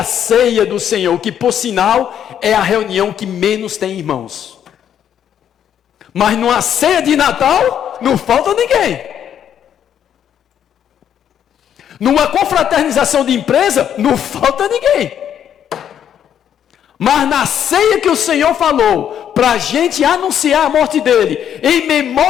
ceia do Senhor, que por sinal é a reunião que menos tem irmãos. Mas numa ceia de Natal não falta ninguém. Numa confraternização de empresa não falta ninguém. Mas na ceia que o Senhor falou, para a gente anunciar a morte dele, em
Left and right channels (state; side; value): quieter; right; 9.4 dB